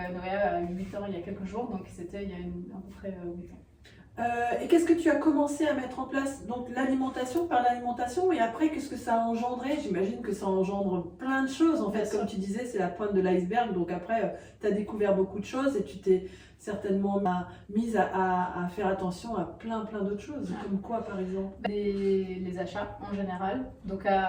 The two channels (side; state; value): both; identical; correlation 1.00